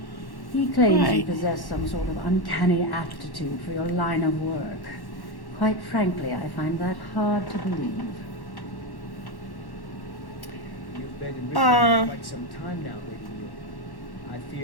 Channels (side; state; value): right; late; 1.1 ms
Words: He claims you Right. possess some sort of uncanny aptitude for your line of work. Quite frankly, I find that hard to believe. You've been in Riften Uh. for quite some time now, Lady Yu. I